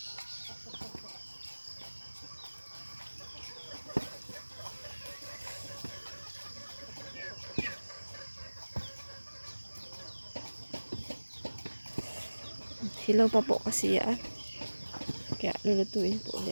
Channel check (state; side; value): inverted; both; correlation -1.00